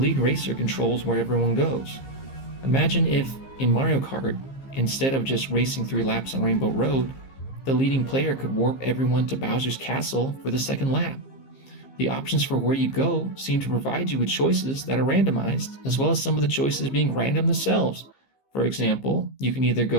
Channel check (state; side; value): late; right; 15 ms